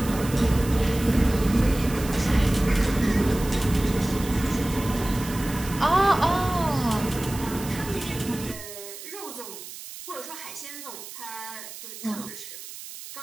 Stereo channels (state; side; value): noise; right; hiss, 13 dB below the sound